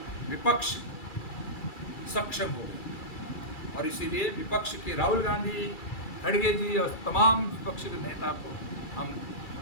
विपक्ष सक्षम हो गए। और इसीलिए विपक्ष के राहुल गांधी, खड़गे जी और तमाम विपक्ष के नेता को हम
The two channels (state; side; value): late; right; 2.3 ms